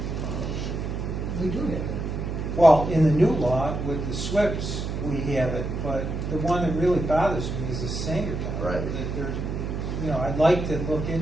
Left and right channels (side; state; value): right; noise; hum, 3 dB below the sound